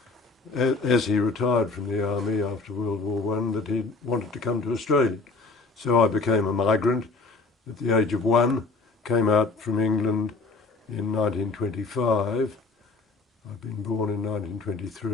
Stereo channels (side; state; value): right; quieter; 3.8 dB